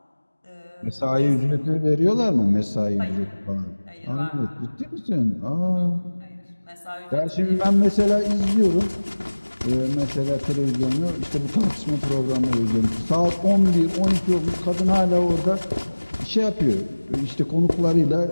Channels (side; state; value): both; inverted; correlation -1.00